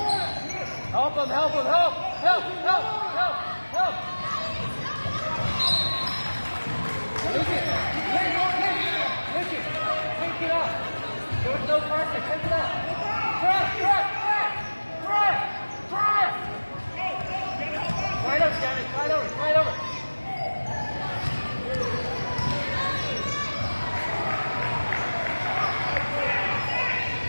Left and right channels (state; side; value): inverted; both; correlation -1.00